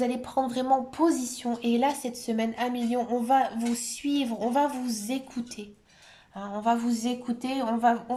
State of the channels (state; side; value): identical; both; correlation 1.00